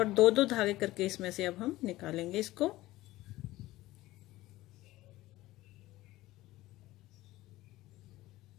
दो दो धागे करके इसमें से अब हम निकालेंगे इसको।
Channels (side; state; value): right; quieter; 17.3 dB